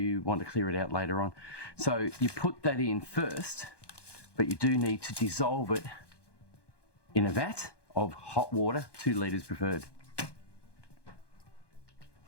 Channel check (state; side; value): late; right; 1.2 ms